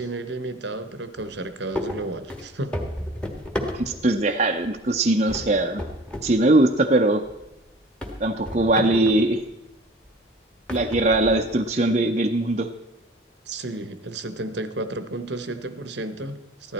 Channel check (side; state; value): both; normal; correlation 0.45